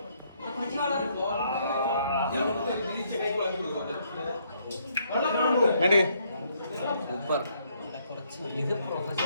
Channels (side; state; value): both; inverted; correlation -0.70